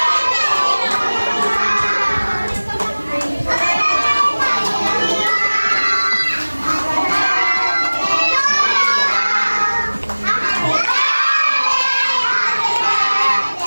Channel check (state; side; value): inverted; both; correlation -1.00